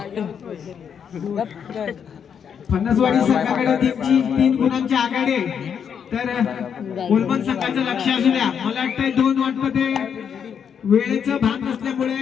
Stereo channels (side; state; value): right; quieter; 7.6 dB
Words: फणसवाडी संघाकडे 3 गुणांची आघाडी आहे. तर ओलवण संघाचं लक्ष असू द्या. मला वाटतंय 2 वाटतं ते वेळेचं भान